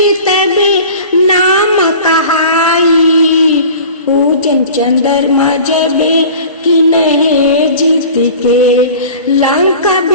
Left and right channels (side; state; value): both; inverted; correlation -0.41